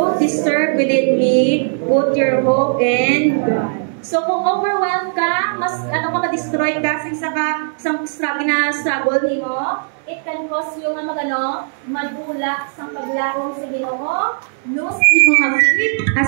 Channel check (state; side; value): silent; left; digital silence